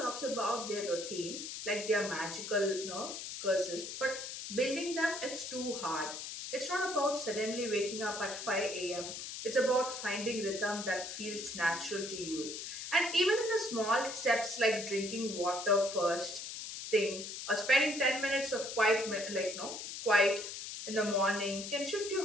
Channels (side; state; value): left; noise; hiss, 7 dB below the sound